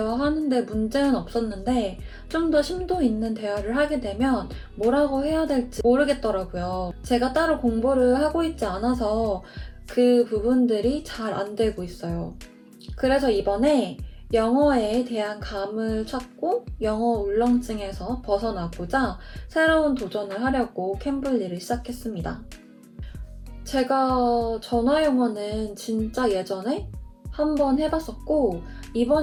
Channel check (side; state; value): both; identical; correlation 1.00